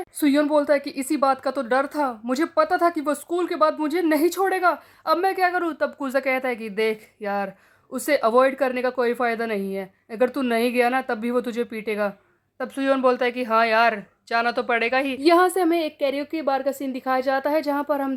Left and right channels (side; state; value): both; identical; correlation 1.00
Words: सुयोन बोलता है कि इसी बात का तो डर था, मुझे पता था कि वो स्कूल के बाद मुझे नहीं छोड़ेगा, अब मैं क्या करूँ। तब कूजा कहता है कि देख यार, उसे अवॉइड करने का कोई फायदा नहीं है, अगर तू नहीं गया ना तब भी वो तुझे पीटेगा। तब सुयोन बोलता है कि हाँ यार, जाना तो पड़ेगा ही। यहाँ से हमें एक कैरियोके बार का सीन दिखाया जाता है, जहाँ पर हम